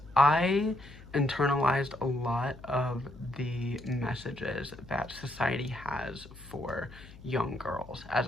I internalized a lot of the messages that society has for young girls as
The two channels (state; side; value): noise; left; hum, 19 dB below the sound